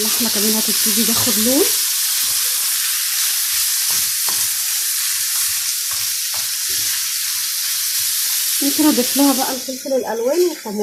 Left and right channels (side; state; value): both; identical; correlation 1.00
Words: كمان هتبتدي تاخد لون. ممكن اضيف لها بقى الفلفل الالوان